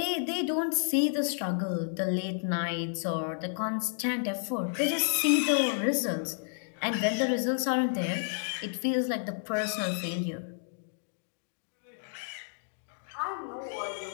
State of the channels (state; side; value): silent; right; digital silence